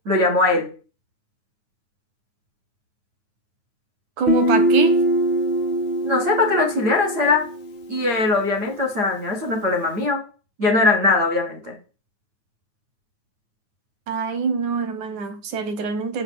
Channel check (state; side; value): late; left; 9.4 ms